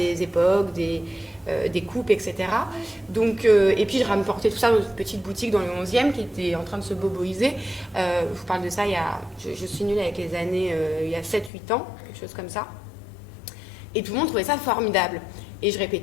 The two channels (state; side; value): drops out; right; at 11.5 s